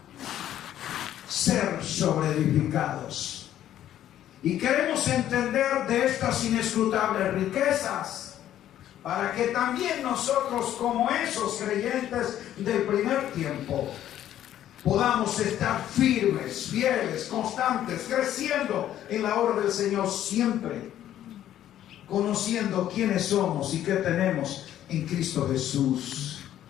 ser sobreedificados. Y queremos entender de estas inescrutables riquezas, para que también nosotros, como esos creyentes del primer tiempo, podamos estar firmes, fieles, constantes, creciendo en la obra del Señor siempre, conociendo quiénes somos y qué tenemos en Cristo Jesús.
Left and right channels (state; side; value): quieter; right; 11.8 dB